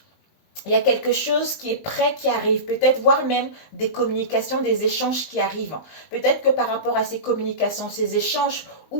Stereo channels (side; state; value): right; late; 19 ms